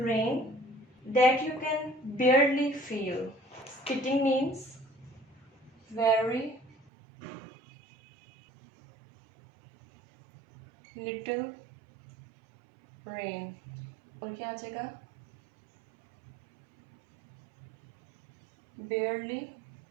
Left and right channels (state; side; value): drops out; left; at 6.9 s